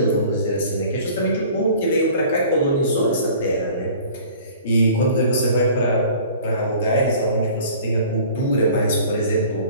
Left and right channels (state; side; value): inverted; both; correlation -0.47